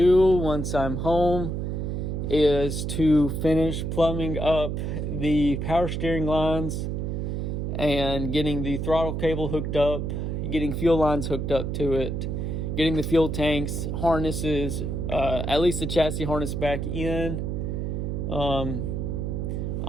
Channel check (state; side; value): noise; right; hum, 2 dB below the sound